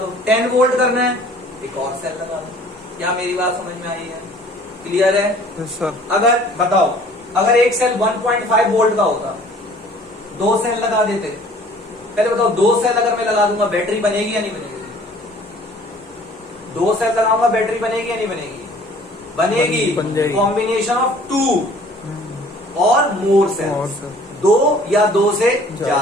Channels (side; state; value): both; normal; correlation 0.52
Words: 10 वोल्ट करना है, एक और सेल लगा दो। क्या मेरी बात समझ में आई है, क्लियर है। सर अगर बताओ, अगर एक सेल 1.5 वोल्ट का होता, 2 सेल लगा देते, पहले बताओ 2 सेल अगर मैं लगा दूंगा बैटरी बनेगी या नहीं बनेगी, 2 सेल लगाऊंगा बैटरी बनेगी या नहीं बनेगी, बनेगी। Combination of 2 or more sales, 2 या 2 से